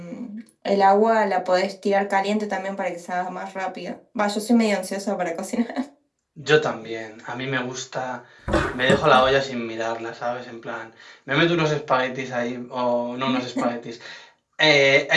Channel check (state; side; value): identical; both; correlation 1.00